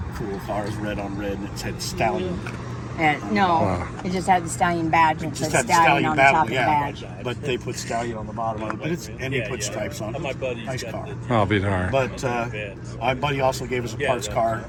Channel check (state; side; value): identical; both; correlation 1.00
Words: cool car. It was red on red, and it said Stallion. And no, it just had the stallion badge and it Just said had the stallion Stallion on the battle, top of the yeah. badge. But they put Stallion on the bottom of it. But and they put stripes on it. Nice car. I'll be darned. But my buddy also gave us a parts car